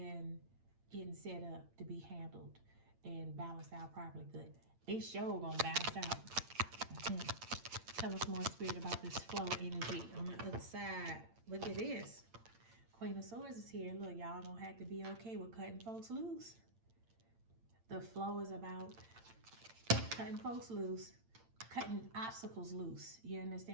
getting set up to be handled and balanced out properly. Good. They sure gonna balance out. Tell us more, Spirit, about this flow energy on the other side. Look at this. Queen of Swords is here. Look, y'all gonna have to be okay with cutting folks loose. The flow is about cutting folks loose, cutting obstacles loose. You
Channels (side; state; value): left; late; 8.8 ms